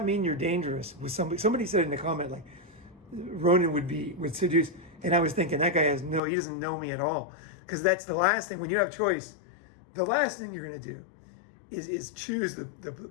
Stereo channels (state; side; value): drops out; right; at 6.2 s